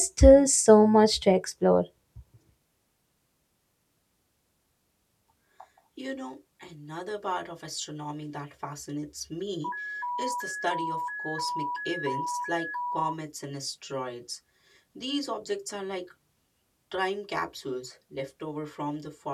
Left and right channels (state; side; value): identical; both; correlation 1.00